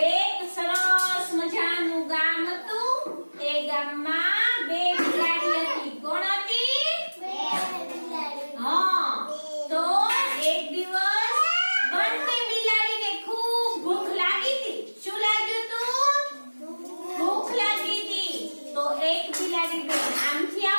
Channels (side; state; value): both; inverted; correlation -1.00